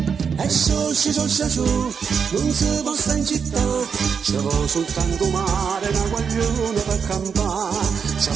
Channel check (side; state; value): left; quieter; 6.4 dB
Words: E sciò, non si può stare in città, ci vuole soltanto mare, una guagliona per campare, ci